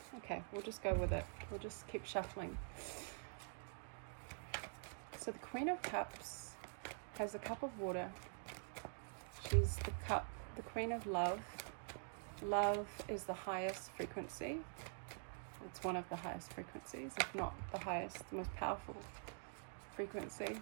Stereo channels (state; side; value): silent; left; digital silence